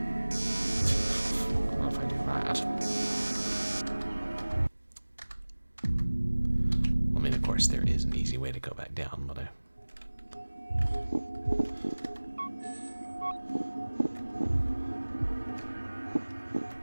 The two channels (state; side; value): inverted; both; correlation -1.00